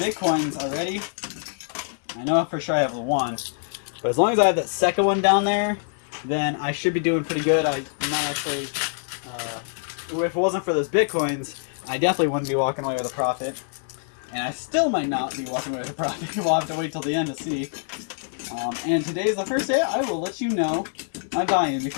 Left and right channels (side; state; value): right; silent; digital silence